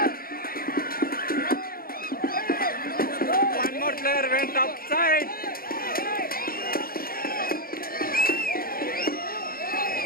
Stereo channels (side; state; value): right; late; 0.43 ms